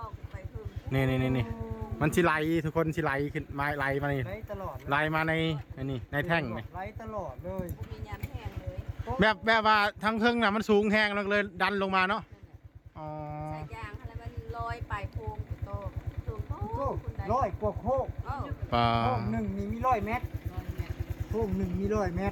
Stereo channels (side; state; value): both; identical; correlation 1.00